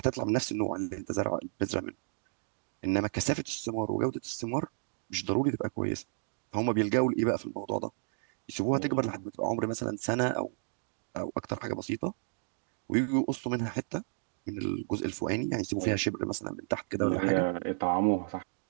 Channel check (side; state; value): left; silent; digital silence